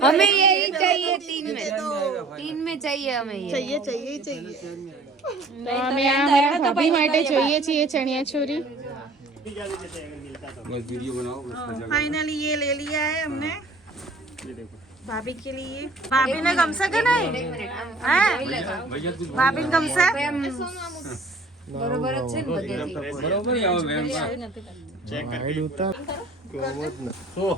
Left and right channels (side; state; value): left; quieter; 3.2 dB